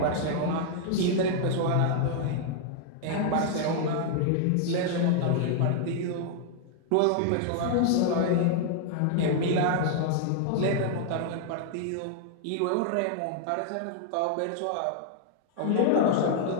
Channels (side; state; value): both; different; correlation 0.00